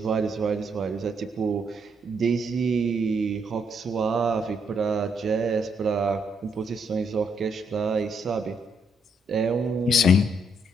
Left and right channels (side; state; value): both; normal; correlation 0.74